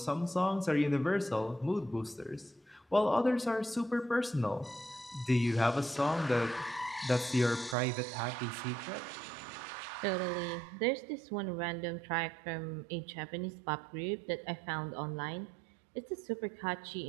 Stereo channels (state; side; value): drops out; left; at 7.8 s